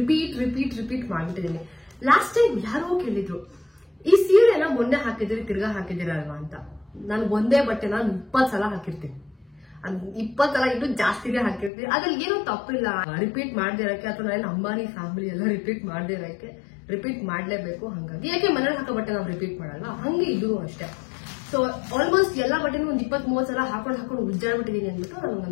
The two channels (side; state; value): right; drops out; at 11.7 s